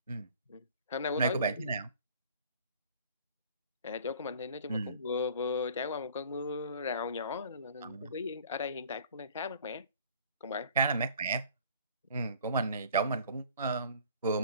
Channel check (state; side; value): inverted; both; correlation -0.50